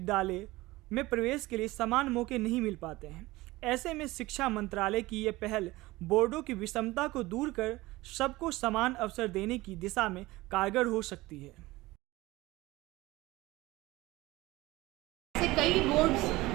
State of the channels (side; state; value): left; quieter; 19.7 dB